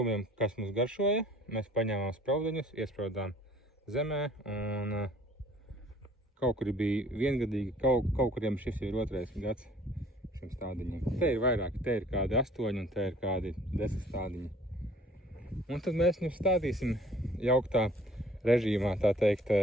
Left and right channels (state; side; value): normal; both; correlation 0.54